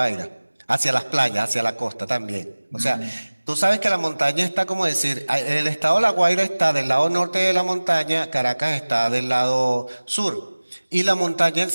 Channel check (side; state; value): both; inverted; correlation -1.00